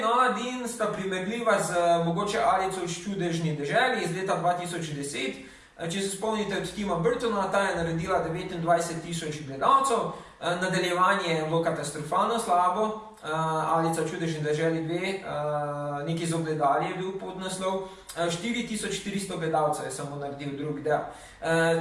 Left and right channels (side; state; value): both; identical; correlation 1.00